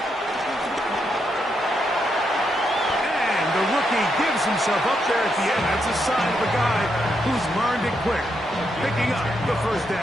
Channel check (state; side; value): normal; both; correlation 0.80